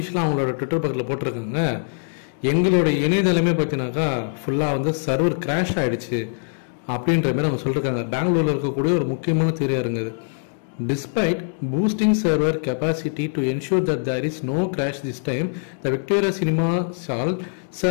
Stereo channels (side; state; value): right; silent; digital silence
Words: அவங்களோட ட்விட்டர் பக்கத்தில் போட்டிருக்காங்க, எங்களோட இணையதளமே பார்த்தீங்கன்னாக்கா ஃபுல்லாக வந்து சர்வர் கிராஷ் ஆகிடுச்சு அப்படின்ற மாதிரி அவங்க சொல்லியிருக்காங்க. பெங்களூரில் இருக்கக்கூடிய ஒரு முக்கியமான திரையரங்கு இது. Despite boosting server capacity to ensure that there is no crash this time, the Victoria Cinema Hall